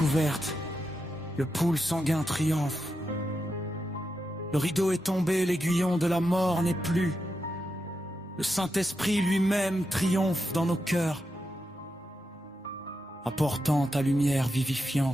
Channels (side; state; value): both; normal; correlation 0.87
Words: le pool sanguin triomphe. Le rideau est tombé, l'aiguillon de la mort n'est plus. Le Saint-Esprit lui-même triomphe dans nos cœurs, apportant ta lumière